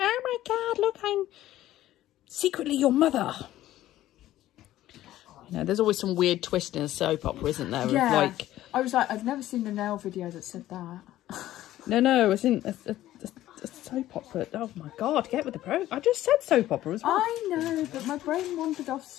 my God, look, I'm secretly your mother. There's always some weird twist in a soap opera, isn't there? Yeah. Like, I was like, I've never seen a Nail video that said that. no, it's in a soap opera. Oh my God, get with the pro. I just said soap opera as well. I know, but my brain wandered off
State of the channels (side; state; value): right; quieter; 14.2 dB